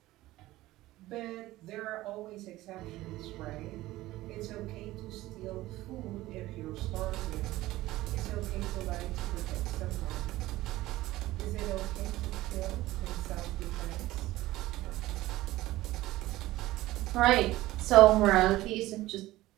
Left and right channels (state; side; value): quieter; left; 17.1 dB